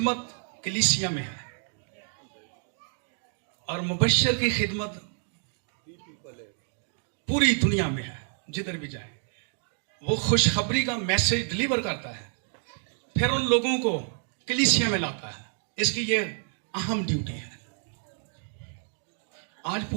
कलीसिया में है, और मुबश्शिर की खिदमत पूरी दुनिया में है, जिधर भी जाए वो खुशखबरी का मैसेज डिलीवर करता है, फिर उन लोगों को कलीसिया में लाता है। इसकी ये अहम ड्यूटी है। आज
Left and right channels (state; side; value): silent; left; 59 dB below the other